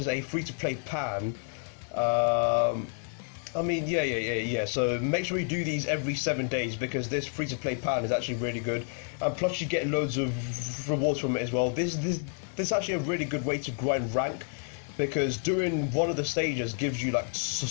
a free-to-play pan. I mean, yeah. So make sure you do these every 7 days because this free-to-play pan is actually really good, and plus you get loads of rewards from it as well. This is actually a really good way to grind rank because doing one of the stages gives you like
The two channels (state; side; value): silent; right; 58 dB below the other